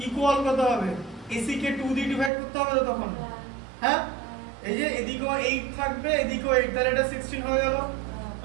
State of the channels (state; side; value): drops out; left; at 2.3 s